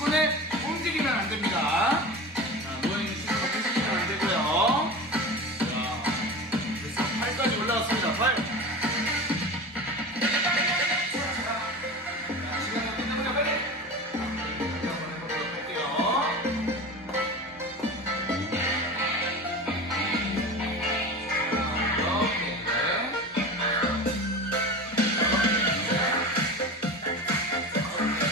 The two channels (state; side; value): normal; both; correlation 0.31